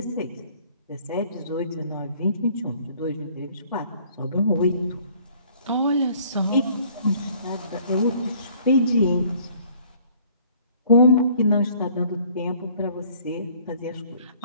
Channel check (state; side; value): inverted; both; correlation -0.57